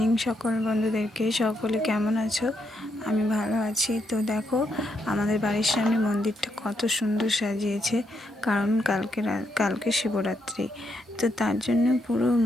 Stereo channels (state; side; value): normal; both; correlation 0.79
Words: সকল বন্ধুদেরকে। সকলে কেমন আছো? আমি ভালো আছি। তো দেখো, আমাদের বাড়ির সামনে মন্দিরটা কত সুন্দর সাজিয়েছে, কারণ কালকে শিবরাত্রি। তো তার জন্য পুরো